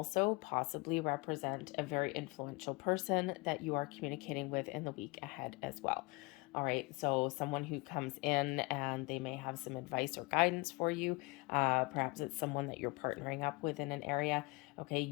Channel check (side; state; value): right; quieter; 26.2 dB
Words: possibly represent a very influential person that you are communicating with in the week ahead as well. All right, so someone who comes in and they may have some advice or guidance for you. Perhaps it's someone that you're partnering up with in an area. Okay,